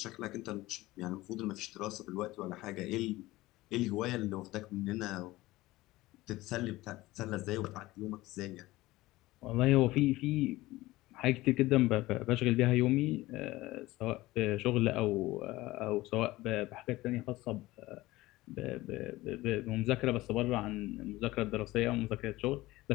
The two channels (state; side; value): quieter; right; 18.5 dB